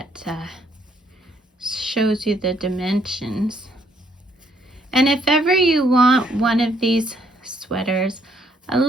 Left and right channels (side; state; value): both; normal; correlation 0.69